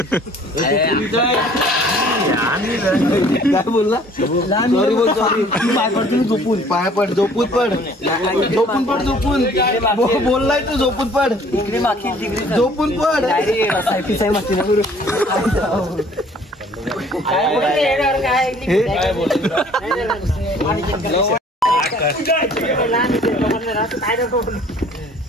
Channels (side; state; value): both; normal; correlation 0.55